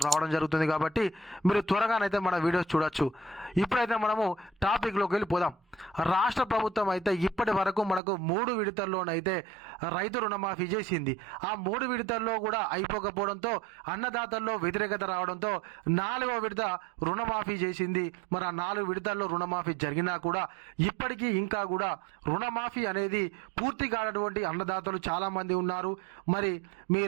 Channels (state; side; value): drops out; left; at 8.0 s